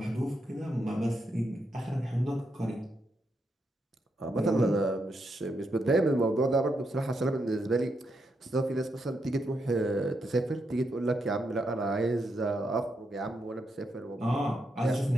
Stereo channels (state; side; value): normal; both; correlation 0.82